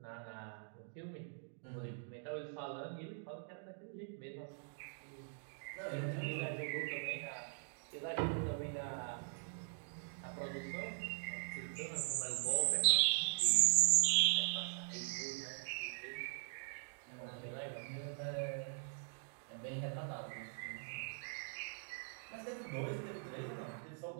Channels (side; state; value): left; silent; digital silence